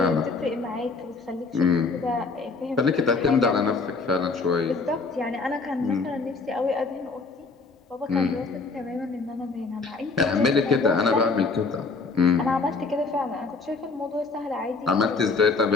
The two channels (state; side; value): quieter; right; 4.1 dB